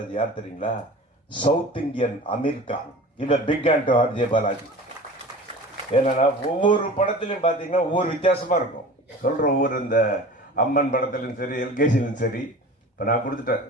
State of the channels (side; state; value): both; normal; correlation 0.38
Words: யார் தெரியுங்களா? South Indian Aamir Khan. இவ big hand to RJ Balaji. ஏன்னா ஒவ்வொரு படத்திலையும் பார்த்தீங்கன்னா ஒவ்வொரு வித்தியாசமா இருக்கும். சொல்ற ஒவ்வொரு இந்த அம்மன் படத்திலும் சரி, எல்கேஜிலும் சரி. இப்போ நான் கொடுத்துட்டேன்